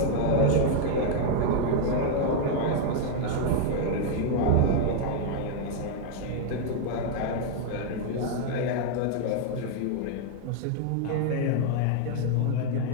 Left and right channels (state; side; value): different; both; correlation 0.00